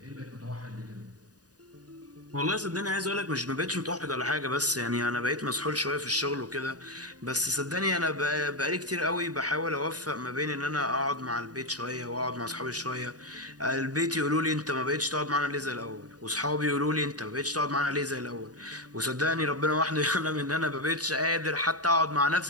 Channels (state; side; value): late; left; 0.68 ms